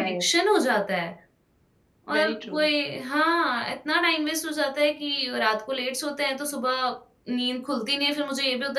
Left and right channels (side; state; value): both; identical; correlation 1.00